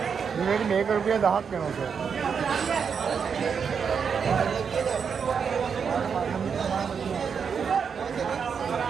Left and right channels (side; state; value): left; quieter; 6.5 dB